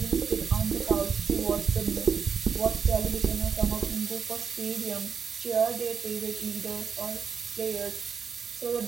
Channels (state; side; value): quieter; left; 6.4 dB